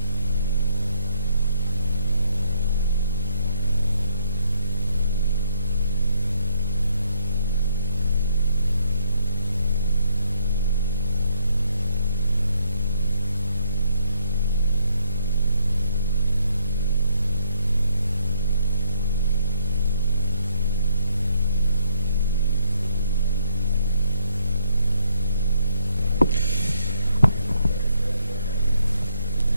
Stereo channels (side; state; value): both; inverted; correlation -0.70